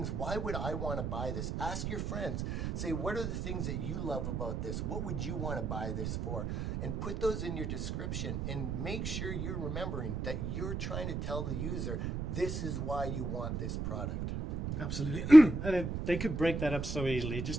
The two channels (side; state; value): right; noise; rumble, 3 dB below the sound